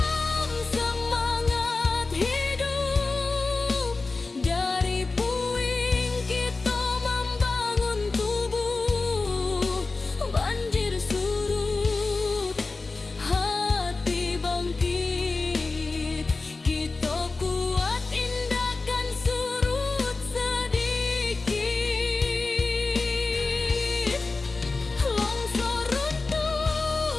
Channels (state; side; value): quieter; right; 3.7 dB